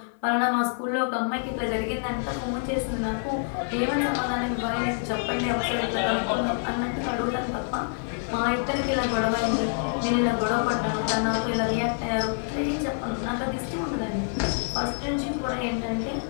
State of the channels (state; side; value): silent; right; 60 dB below the other